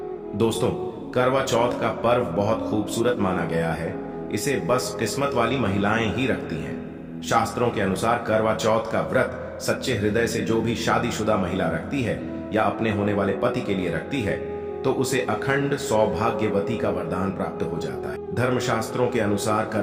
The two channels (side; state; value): both; identical; correlation 1.00